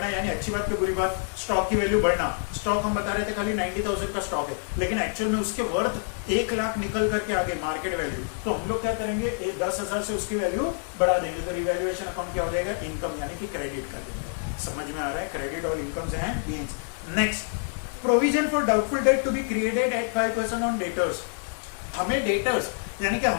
यानी अच्छी बात की बुरी बात, स्टॉक की वैल्यू बढ़ना। स्टॉक हम बता रहे थे खाली 90,000 का स्टॉक है, लेकिन एक्चुअल में उसके वर्थ 1 लाख निकल करके आगे मार्केट वैल्यू, तो हम लोग क्या करेंगे, 10,000 से उसकी वैल्यू बढ़ा देंगे। तो रिवैल्यूएशन अकाउंट क्या हो जाएगा, इनकम, यानी कि क्रेडिट कर देंगे। समझ में आ रहा है, क्रेडिट और incomes and gains. Next, provision for doubtful debt to be created at 5% on debtors. हमें डेटर्स यानी कि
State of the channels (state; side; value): silent; right; 60 dB below the other